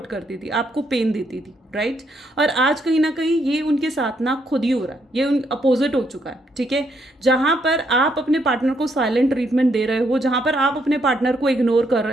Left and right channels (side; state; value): both; normal; correlation 0.75